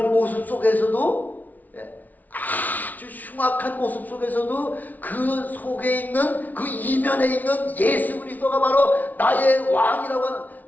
아주 흉악한 모습 속에서도 그 속에 있는 그 이면에 있는 예수 그리스도가 바로 나의 왕이라고 하는,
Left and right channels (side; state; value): right; late; 0.077 ms